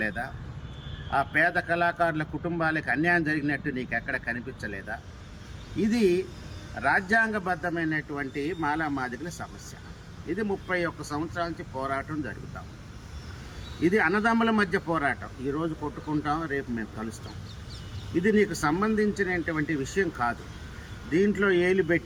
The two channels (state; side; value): identical; both; correlation 1.00